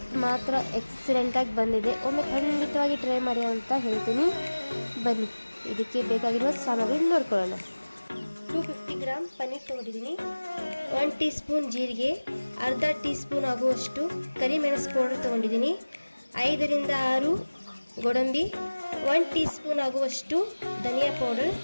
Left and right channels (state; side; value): inverted; both; correlation -1.00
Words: ಮಾತ್ರ ಎಕ್ಸಲೆಂಟಾಗಿ ಬಂದಿದೆ. ಒಮ್ಮೆ ಖಂಡಿತವಾಗಿ ಟ್ರೈ ಮಾಡಿ ಅಂತ ಹೇಳ್ತೀನಿ. ಬನ್ನಿ, ಇದಕ್ಕೆ ಬೇಕಾಗಿರುವ ಸಾಮಗ್ರಿ ನೋಡ್ಕೊಳ್ಳೋಣ. 250 ಗ್ರಾಮ್ ಪನ್ನೀರ್ ತೊಗೊಂಡಿದ್ದೀನಿ. 1 ಟೀ ಸ್ಪೂನ್ ಜೀರಿಗೆ, ಅರ್ಧ ಟೀ ಸ್ಪೂನ್ ಆಗುವಷ್ಟು ಕರಿಮೆಣಸು ಪೌಡರ್ ತೊಗೊಂಡಿದ್ದೀನಿ. 5 ರಿಂದ 6 ಗೋಡಂಬಿ, 1 ಟೀ ಸ್ಪೂನ್ ಆಗುವಷ್ಟು ಧನಿಯಾ ಪೌಡರ್,